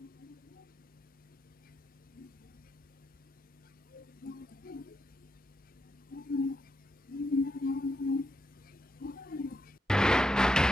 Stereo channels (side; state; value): both; normal; correlation 0.83